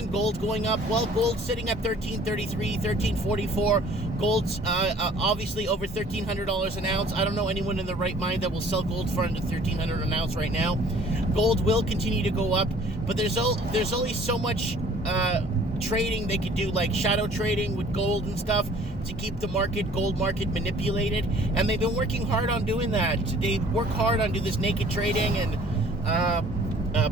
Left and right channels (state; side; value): normal; both; correlation 0.54